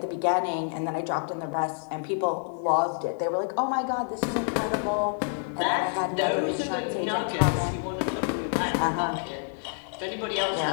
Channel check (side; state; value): right; silent; 59 dB below the other